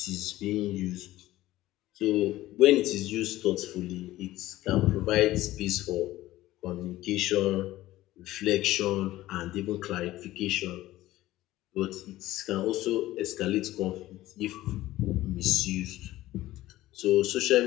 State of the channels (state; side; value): quieter; right; 16.0 dB